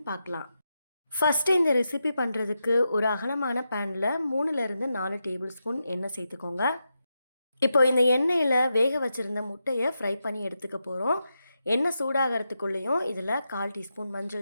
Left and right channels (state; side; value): inverted; both; correlation -0.87